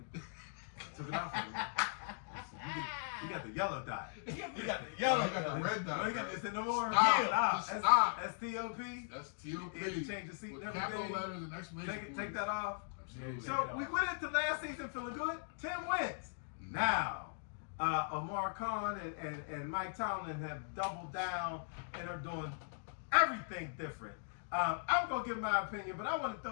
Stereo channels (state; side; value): silent; right; digital silence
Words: Took it off of it. You got the yellow dot. You got the Yellow, yellow. you got the red dot. No, you got this in no more. Stop. Stop. That's T-O-P. That's T.O.P. You had to change the seat With and capital everything. letters and exclamation Take that off. Absolutely. So we went into last season feeling good. 10 wins. Now, Amar Khan and Mike Tomlin have doubled down and are doing everything different. I'm going to give my opinion, but I want to